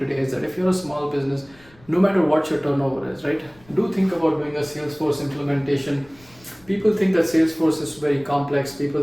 is that if you're a small business, no matter what your turnover is, right? Do think about doing a Salesforce implementation. People think that Salesforce is very complex.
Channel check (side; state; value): left; noise; rumble, 27 dB below the sound